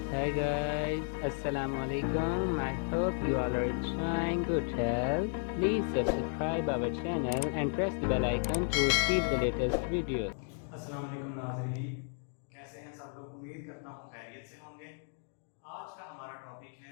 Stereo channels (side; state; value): right; silent; 55 dB below the other